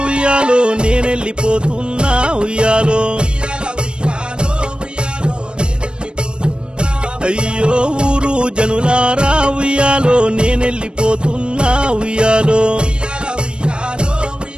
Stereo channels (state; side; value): late; left; 0.054 ms